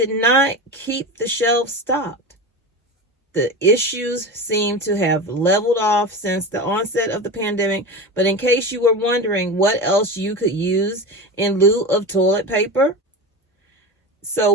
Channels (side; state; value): both; normal; correlation 0.25